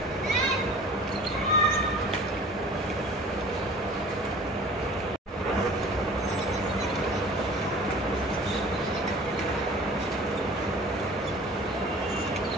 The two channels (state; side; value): normal; both; correlation 0.45